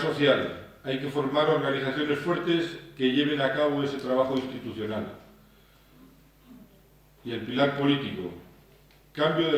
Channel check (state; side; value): identical; both; correlation 1.00